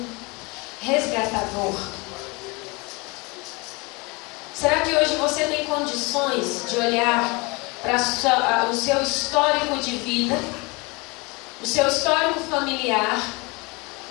resgatador? Será que hoje você tem condições de olhar para o seu histórico de vida, o seu histórico familiar?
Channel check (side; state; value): right; quieter; 27.2 dB